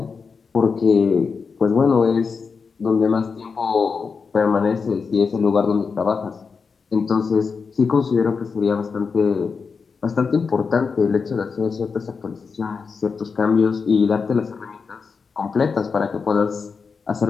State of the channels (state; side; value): quieter; right; 5.2 dB